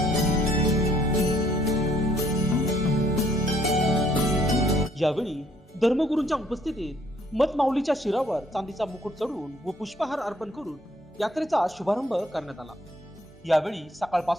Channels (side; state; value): both; normal; correlation 0.65